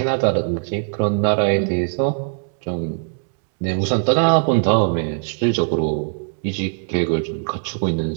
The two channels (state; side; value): silent; left; 65 dB below the other